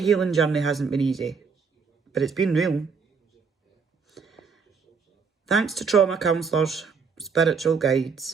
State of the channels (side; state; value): left; quieter; 5.4 dB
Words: journey hasn't been easy, but it's been real. Thanks to trauma counsellors, spiritual